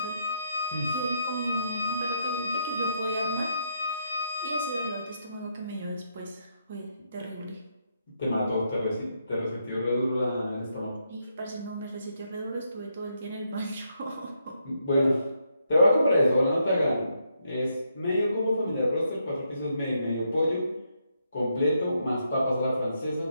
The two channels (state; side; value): inverted; both; correlation -0.78